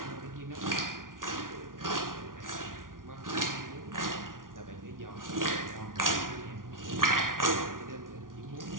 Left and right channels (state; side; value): late; left; 0.89 ms